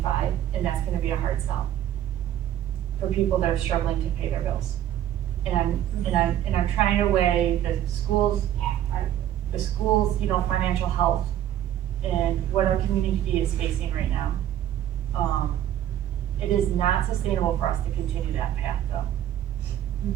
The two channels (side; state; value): left; quieter; 11.5 dB